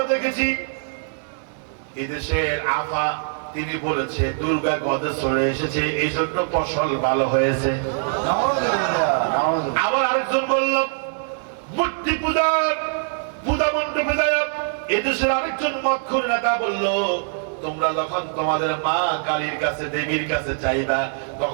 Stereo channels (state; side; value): silent; left; 64 dB below the other